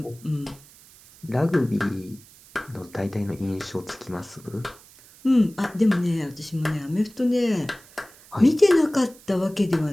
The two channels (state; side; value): noise; right; hiss, 24 dB below the sound